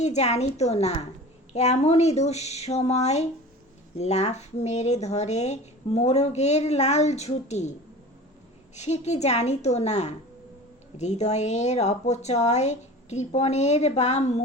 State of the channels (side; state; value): both; normal; correlation 0.37